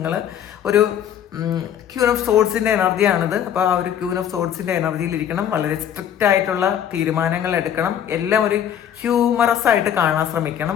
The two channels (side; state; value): right; quieter; 9.6 dB